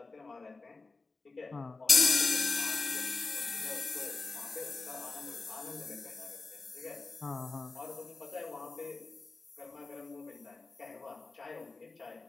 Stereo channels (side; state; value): right; quieter; 3.8 dB